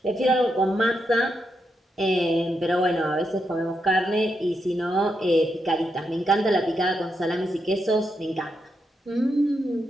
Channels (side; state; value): both; normal; correlation 0.83